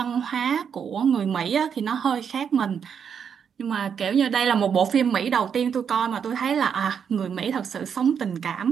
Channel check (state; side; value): quieter; left; 7.3 dB